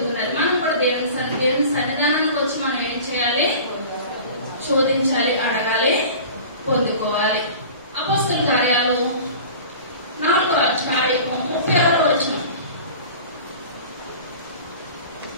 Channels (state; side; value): inverted; both; correlation -0.40